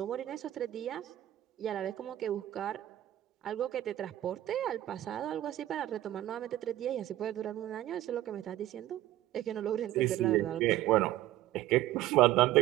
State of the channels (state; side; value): quieter; left; 14.3 dB